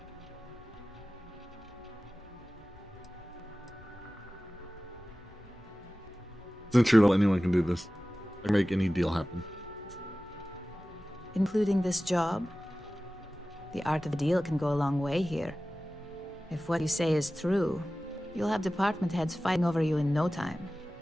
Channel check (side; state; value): both; normal; correlation 0.96